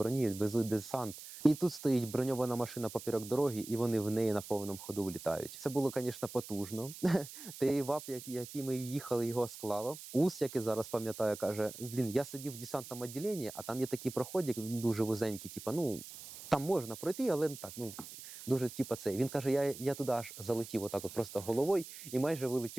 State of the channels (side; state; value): right; noise; hiss, 13 dB below the sound